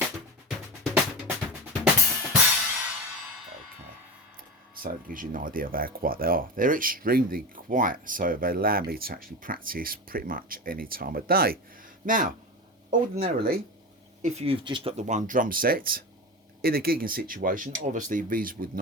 so it gives you an idea of how quiet they are. They're extremely quiet, so they allow me to actually practice pretty much any time of day. Now, ordinarily, if you've just got the one drum set, in a gigging situation, obviously these would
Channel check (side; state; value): both; normal; correlation 0.24